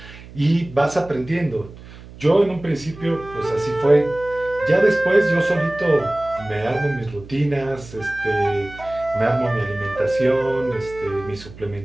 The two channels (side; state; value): right; noise; hum, 18 dB below the sound